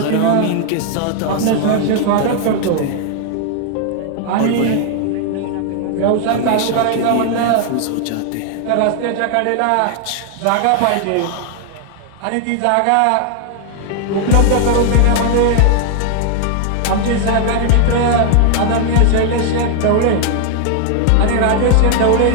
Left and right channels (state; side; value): different; both; correlation 0.00